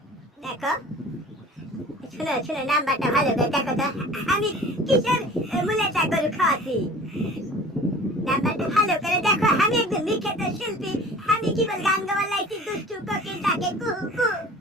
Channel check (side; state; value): both; normal; correlation 0.43